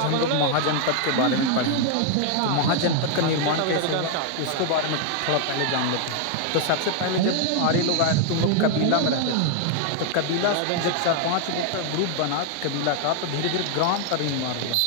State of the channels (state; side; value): different; both; correlation 0.00